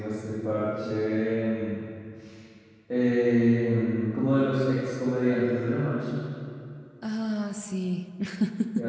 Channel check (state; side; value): identical; both; correlation 1.00